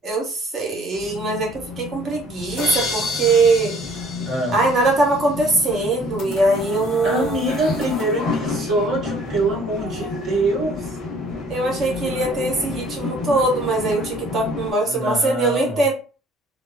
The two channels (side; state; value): both; normal; correlation 0.56